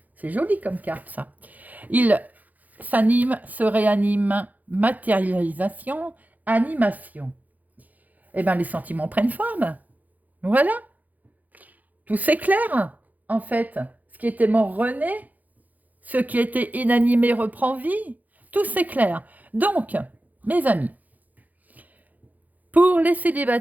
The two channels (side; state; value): left; late; 0.080 ms